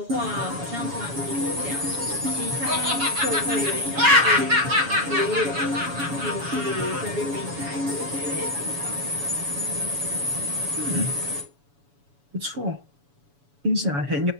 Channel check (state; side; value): late; left; 7.1 ms